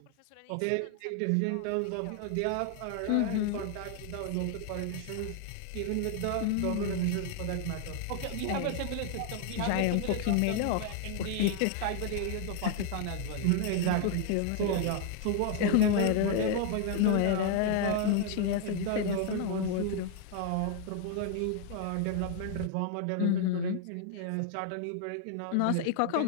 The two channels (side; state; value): both; different; correlation 0.00